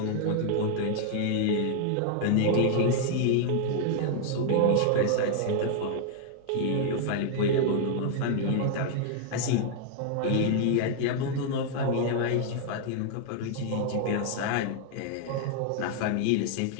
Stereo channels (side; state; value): both; different; correlation 0.00